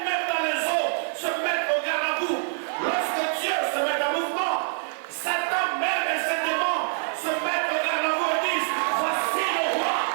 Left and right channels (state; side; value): silent; left; 60 dB below the other